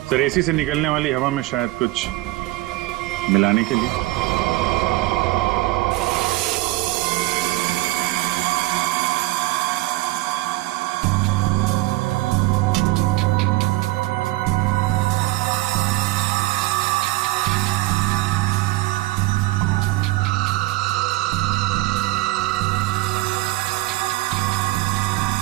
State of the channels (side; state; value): left; quieter; 18.7 dB